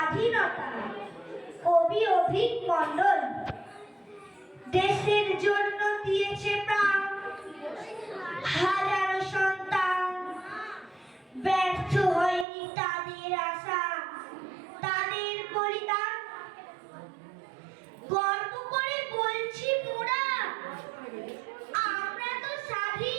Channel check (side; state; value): left; drops out; at 12.5 s